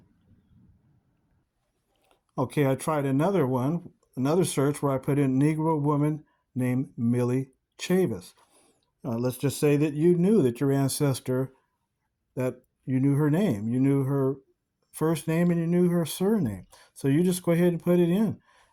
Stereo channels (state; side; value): identical; both; correlation 1.00